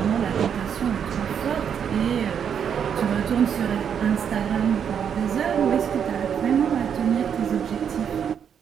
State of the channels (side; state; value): left; quieter; 7.9 dB